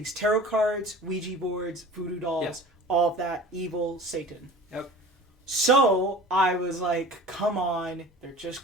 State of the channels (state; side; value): normal; both; correlation 0.41